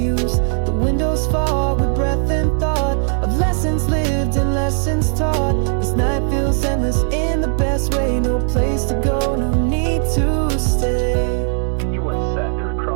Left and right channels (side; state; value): left; silent; digital silence